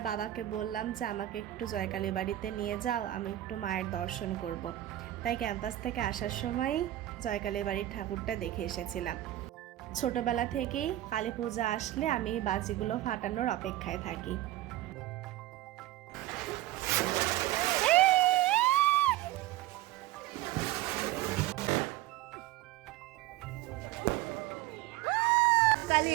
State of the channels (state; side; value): quieter; left; 15.0 dB